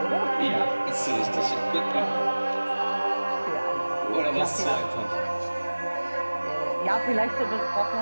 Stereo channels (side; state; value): both; inverted; correlation -1.00